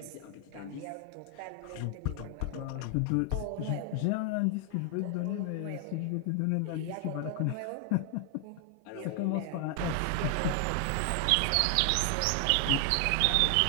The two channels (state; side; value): different; both; correlation 0.00